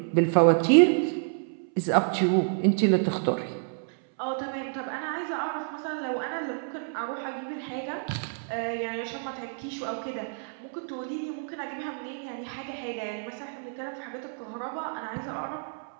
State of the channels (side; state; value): left; silent; 59 dB below the other